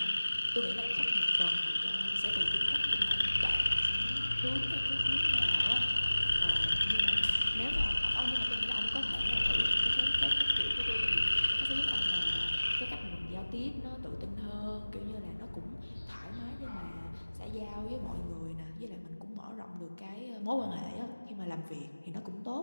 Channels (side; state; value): both; inverted; correlation -1.00